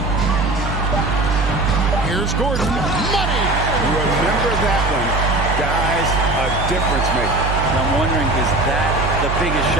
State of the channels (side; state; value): right; noise; hum, 2 dB below the sound